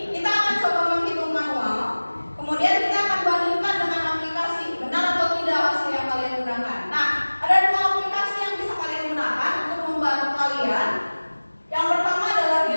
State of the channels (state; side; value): inverted; both; correlation -1.00